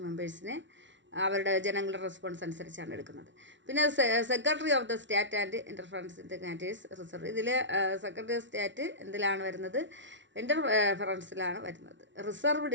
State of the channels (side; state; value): left; late; 0.54 ms